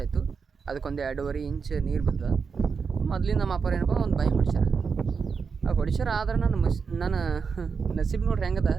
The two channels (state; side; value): quieter; left; 5.5 dB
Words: ಆಯಿತು. ಅದಕ್ಕೊಂದು 2.5 ಇಂಚ್ ನೀರು ಬಂದ. ಮೊದ್ಲಿನ ನಮ್ಮ ಅಪ್ಪ ಏನಪ್ಪ ಒಂದು ಬಾಯಿ ಹೊಡಿಸ್ಯಾರ. ಆ ಹೊಡಿಸ್ಯಾರ ಆದ್ರೆ ನನ್ನ ನಸೀಬ್ ನೋಡ್ರಿ ಹೆಂಗದ,